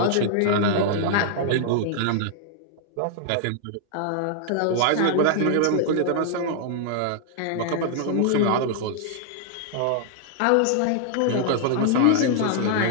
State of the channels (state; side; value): different; both; correlation 0.00